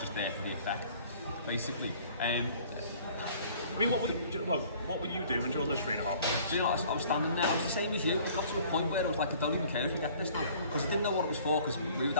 there for the effect, basically. I mean, what were you doing during those 3.5 minutes? You know, I was standing there. I was the same as you. It got to a point where I was like, I don't even care if we get this now, because I didn't know what it was for. Because we were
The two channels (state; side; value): inverted; both; correlation -0.53